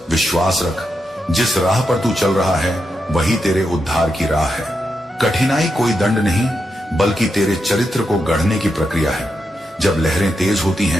विश्वास रख। जिस राह पर तू चल रहा है वही तेरे उद्धार की राह है। कठिनाई कोई दंड नहीं बल्कि तेरे चरित्र को गढ़ने की प्रक्रिया है। जब लहरें तेज होती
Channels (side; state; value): both; normal; correlation 0.85